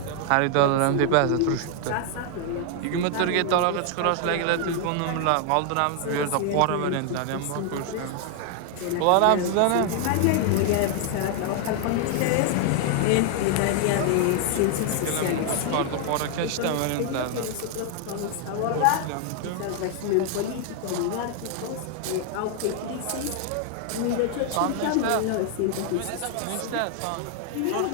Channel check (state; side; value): different; both; correlation 0.00